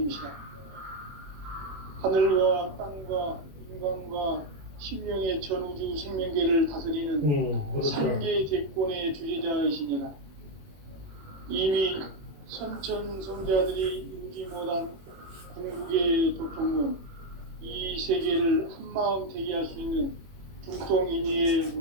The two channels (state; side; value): late; left; 21 ms